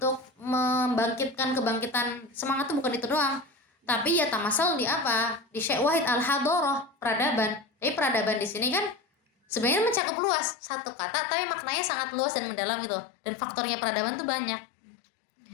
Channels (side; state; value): right; drops out; at 10.0 s